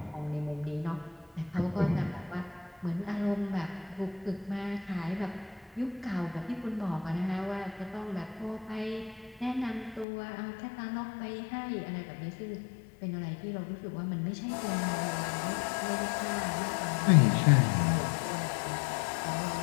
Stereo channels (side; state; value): right; drops out; at 10.1 s